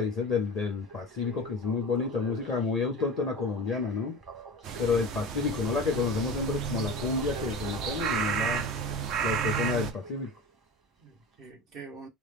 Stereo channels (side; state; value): both; normal; correlation 0.32